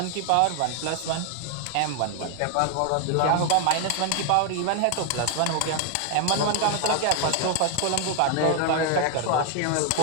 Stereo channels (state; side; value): different; both; correlation 0.01